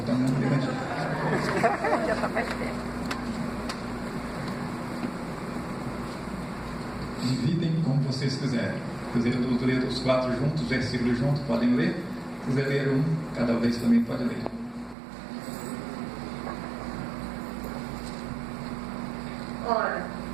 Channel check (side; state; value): left; drops out; at 15.0 s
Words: não levantou. Dividem como vocês quiserem. Se quiserem ler os 4 juntos, os versículos juntos, podem ler. Se quiser ler um, cada vez também pode ler. Ora,